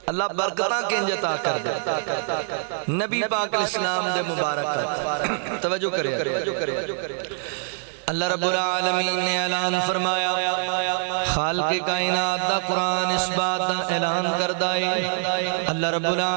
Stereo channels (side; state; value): left; silent; 62 dB below the other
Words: اللہ برکتاں کنج عطا کر دے نبی پاک علیہ السلام دے مبارکات توجہ کرے اللہ رب العالمین نے اعلان فرمایا خالق کائنات دا قرآن اس بات دا اعلان کردائے اللہ رب